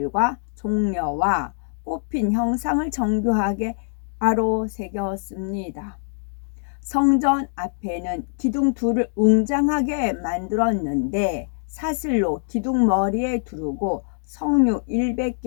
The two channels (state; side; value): silent; right; digital silence